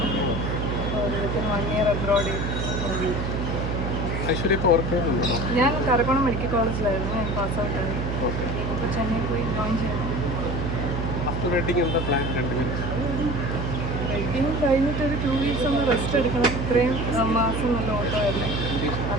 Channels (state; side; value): noise; right; hum, 2 dB below the sound